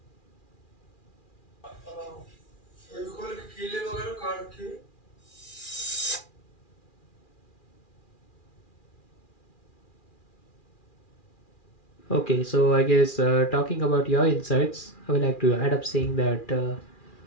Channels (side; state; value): right; late; 2.4 ms